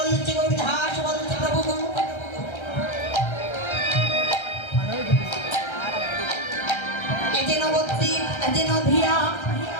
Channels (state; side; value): late; right; 1.3 ms